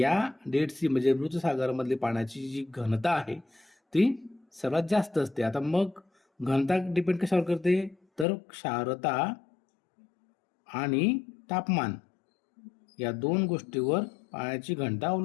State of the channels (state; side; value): drops out; right; at 8.2 s